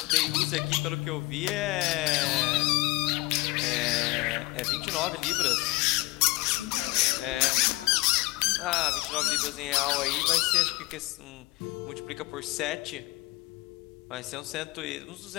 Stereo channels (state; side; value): quieter; right; 22.0 dB